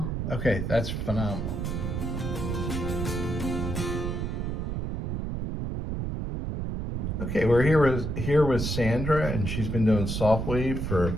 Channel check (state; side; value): noise; right; rumble, 2 dB below the sound